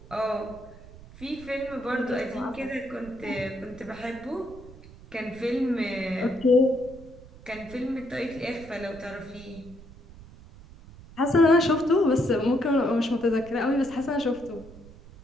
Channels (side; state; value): right; noise; rumble, 19 dB below the sound